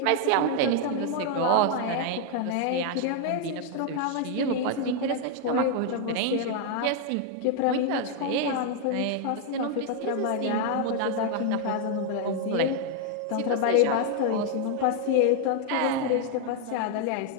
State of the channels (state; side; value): different; both; correlation 0.00